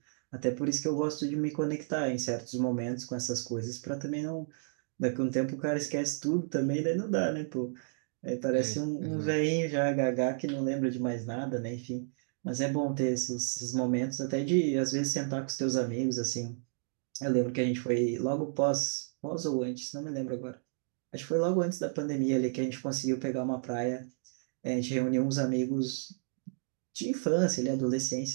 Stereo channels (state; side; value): silent; left; digital silence